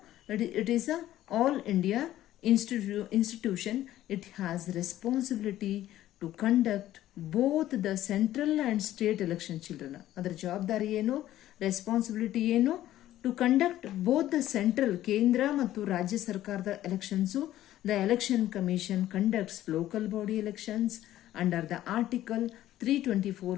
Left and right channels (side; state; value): right; quieter; 13.6 dB